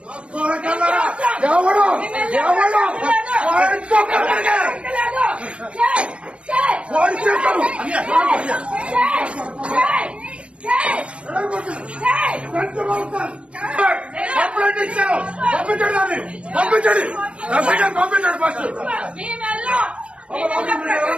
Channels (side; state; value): left; late; 0.059 ms